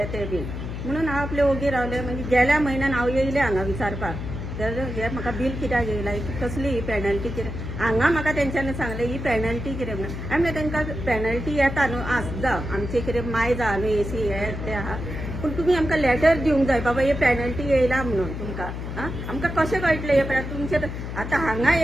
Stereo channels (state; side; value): noise; left; hum, 6 dB below the sound